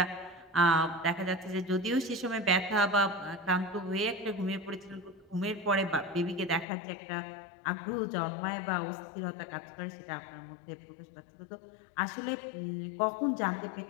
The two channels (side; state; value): right; drops out; at 6.7 s